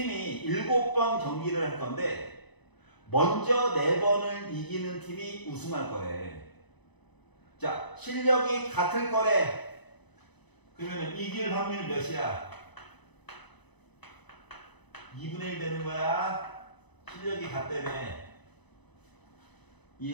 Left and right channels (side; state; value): right; late; 1.0 ms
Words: 7번 경기를 할 건데 먼저 4번을 이기는 팀이 우승할 거래. 자, 실력이 같을 거래. 그러면 이길 확률 몇이야? 2분의 1 되는 거야. 실력이 같다며.